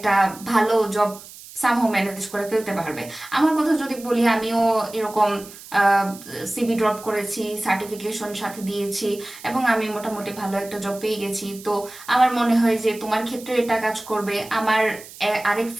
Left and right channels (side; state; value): right; noise; hiss, 17 dB below the sound